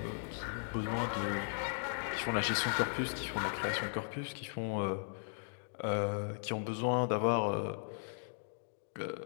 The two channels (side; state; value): right; silent; digital silence